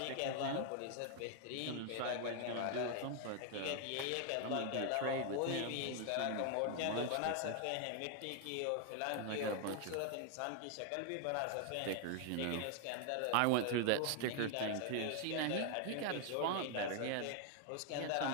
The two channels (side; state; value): both; different; correlation 0.00